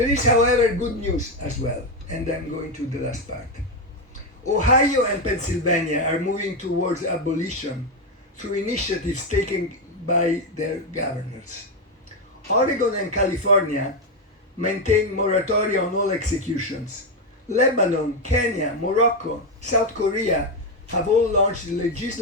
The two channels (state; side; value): normal; both; correlation 0.07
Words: is, however, good news as well, and I'm going to the last part. Ohio and Pennsylvania are moving towards abolition through initiatives taken by their governors. Oregon and California maintain moratoria on all executions. Lebanon, Kenya, Morocco, South Korea have all launched